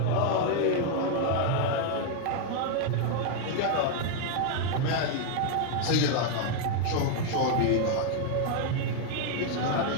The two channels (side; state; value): both; different; correlation 0.00